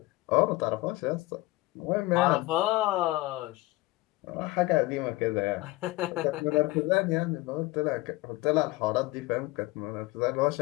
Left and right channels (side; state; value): right; quieter; 20.3 dB